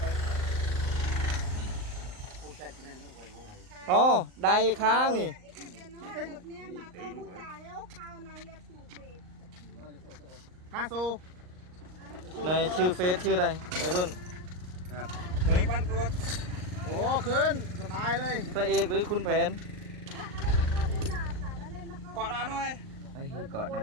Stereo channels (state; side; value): late; left; 38 ms